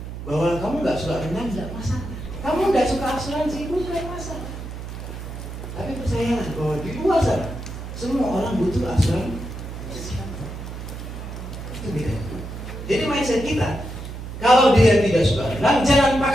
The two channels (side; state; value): right; noise; hum, 9 dB below the sound